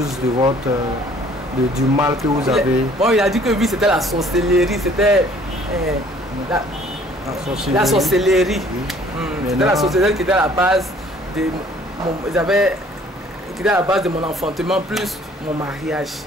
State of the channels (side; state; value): both; normal; correlation 0.56